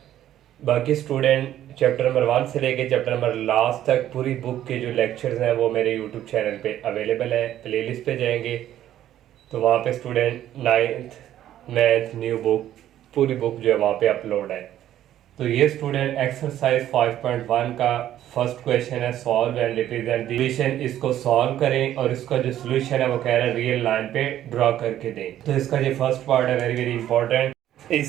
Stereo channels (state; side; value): quieter; left; 12.0 dB